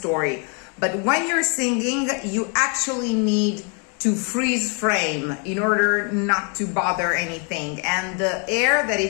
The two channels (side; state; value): right; quieter; 38.1 dB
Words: But when you're singing, you actually need to freeze frame in order not to bother anything. And the air that